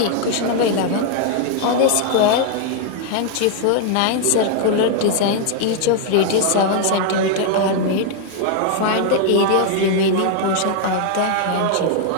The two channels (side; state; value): both; different; correlation 0.00